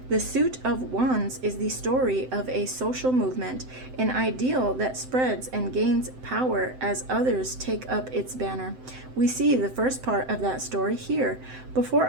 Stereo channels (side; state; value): left; late; 7.8 ms